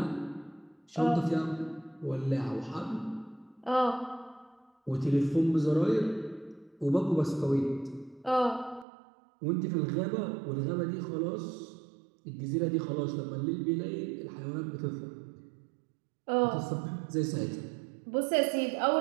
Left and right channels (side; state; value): left; drops out; at 8.8 s